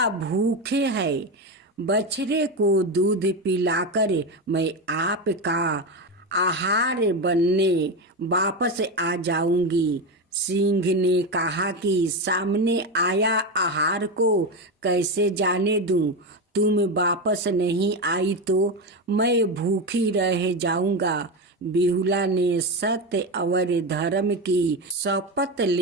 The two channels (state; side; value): normal; both; correlation 0.15